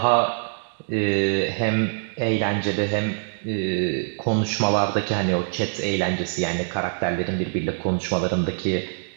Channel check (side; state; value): left; silent; 63 dB below the other